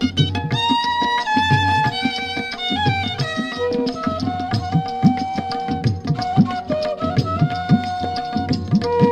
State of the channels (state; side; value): identical; both; correlation 1.00